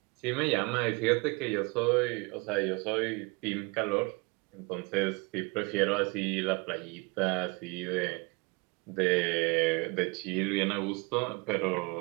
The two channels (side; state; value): left; quieter; 27.8 dB